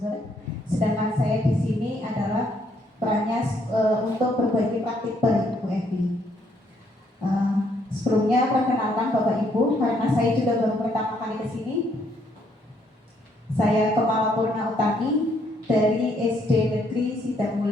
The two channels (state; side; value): normal; both; correlation 0.70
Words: Sedangkan saya di sini adalah perannya untuk berbagi praktik baik Bu Evi. Sebelumnya perkenalkan Bapak Ibu, karena saya juga baru pertama kali ke sini. Saya Kepala Purna Utami dari SD Negeri